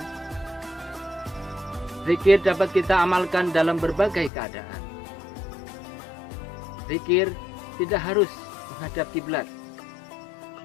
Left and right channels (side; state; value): right; drops out; at 4.3 s